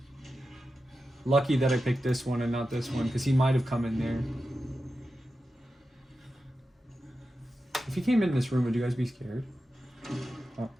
Lucky that I picked this one and not this one, because he might have come in there. If he came in this room, would you guys be scared? Oh.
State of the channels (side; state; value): both; normal; correlation 0.91